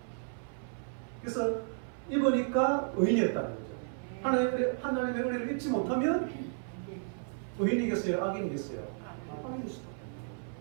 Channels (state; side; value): silent; left; 56 dB below the other